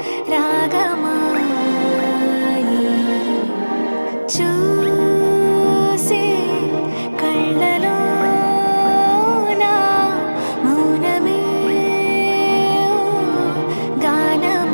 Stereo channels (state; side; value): inverted; both; correlation -1.00